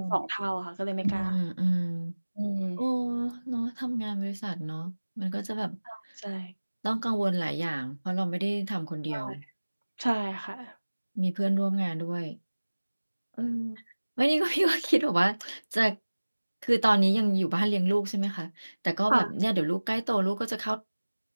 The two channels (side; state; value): both; inverted; correlation -1.00